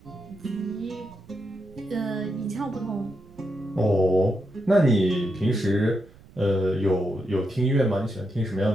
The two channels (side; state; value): right; noise; rumble, 24 dB below the sound